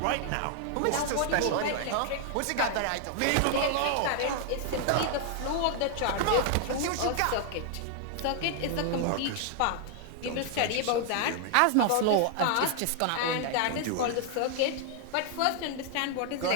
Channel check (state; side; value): different; both; correlation 0.00